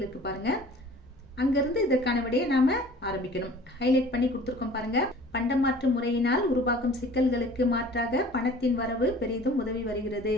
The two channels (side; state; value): both; normal; correlation 0.47